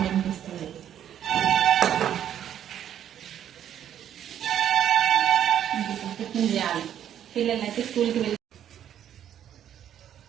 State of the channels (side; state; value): left; quieter; 10.2 dB